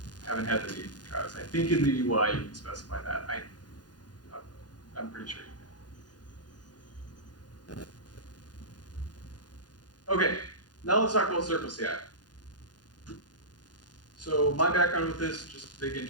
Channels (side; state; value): right; late; 0.69 ms